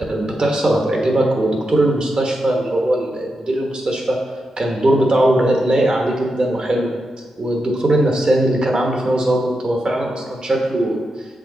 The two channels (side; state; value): both; normal; correlation 0.87